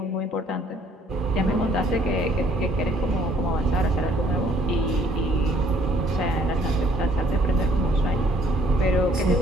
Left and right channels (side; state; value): both; normal; correlation 0.62